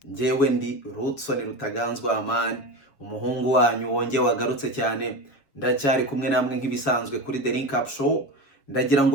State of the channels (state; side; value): late; right; 7.2 ms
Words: njyewe ndi Rutson Rutaganzwa Amani, umuhungu wanyu wonge wagarutse cyane. Ndacyari kumwe namwe nk'ibisanzwe kuri The Link Up Show. Ndagira